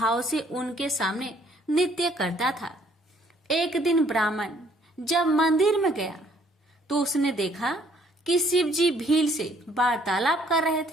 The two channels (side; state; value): both; normal; correlation 0.63